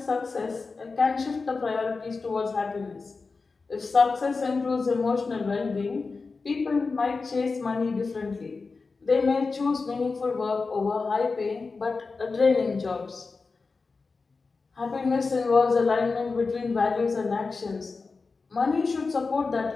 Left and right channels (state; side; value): quieter; right; 4.2 dB